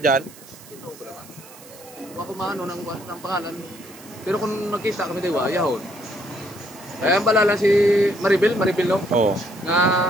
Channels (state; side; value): noise; right; hiss, 20 dB below the sound